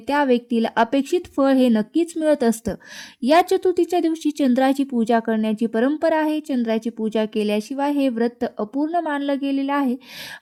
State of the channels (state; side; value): identical; both; correlation 1.00